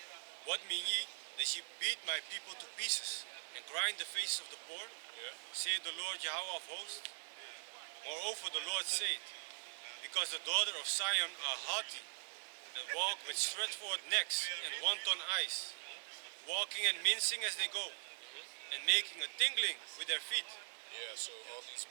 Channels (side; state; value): left; silent; digital silence